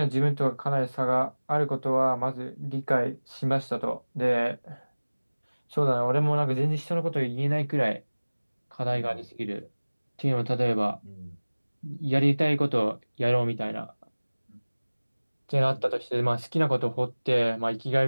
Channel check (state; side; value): inverted; both; correlation -1.00